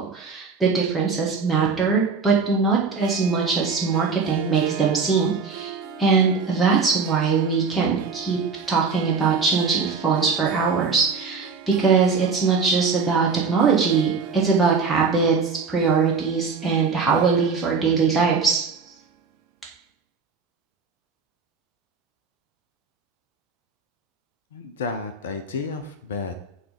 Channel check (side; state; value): left; quieter; 5.0 dB